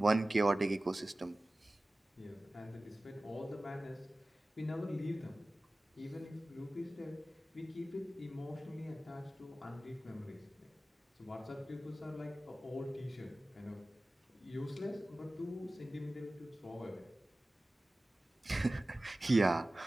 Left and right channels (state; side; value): normal; both; correlation 0.97